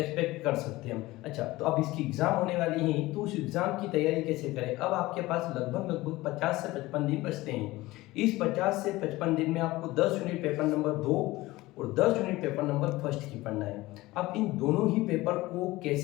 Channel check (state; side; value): quieter; right; 19.1 dB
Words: कर सकते हैं हम। अच्छा, तो अब इसकी एग्ज़ाम होने वाली है, तो उस एग्ज़ाम की तैयारी कैसे करें? अब आपके पास लगभग 50 से 55 दिन बचते हैं। इस 50 से 55 दिन में आपको 10 यूनिट पेपर नंबर 2 और 10 यूनिट पेपर नंबर फर्स्ट की पढ़ना है। अब इन दोनों ही पेपर को